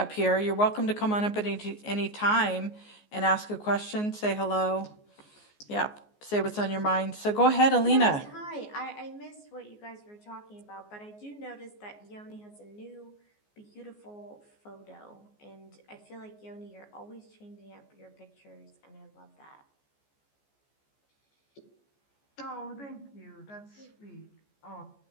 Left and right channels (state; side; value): late; right; 14 ms